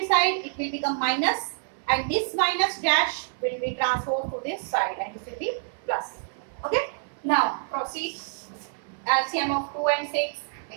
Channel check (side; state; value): left; silent; 58 dB below the other